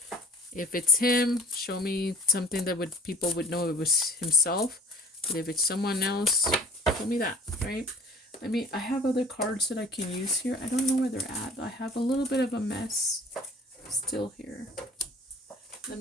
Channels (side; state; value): both; normal; correlation 0.49